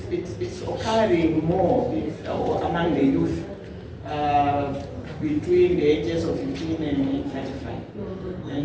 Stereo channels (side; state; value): both; identical; correlation 1.00